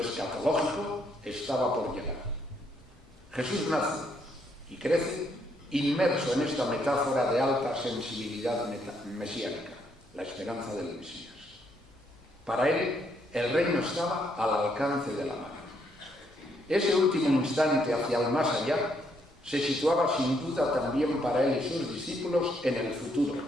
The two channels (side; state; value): both; normal; correlation 0.73